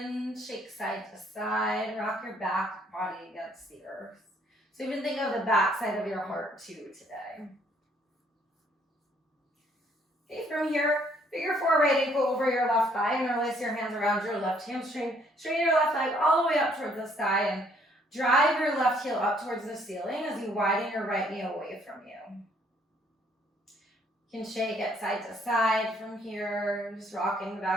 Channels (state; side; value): normal; both; correlation 0.65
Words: shake side to side, rock your back body against the earth. So even think of the back side of your heart too today. Okay, from here, figure four right ankle over your left thigh and release your hands around your left hamstring. Straighten your left leg all the way up towards the sky and drive your left heel up towards the ceiling as you widen your right knee away from you. You can shake it side to side from here, just rocking the